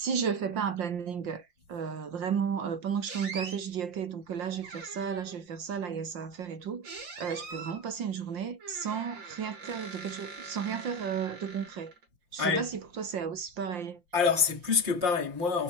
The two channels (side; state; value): left; late; 5.7 ms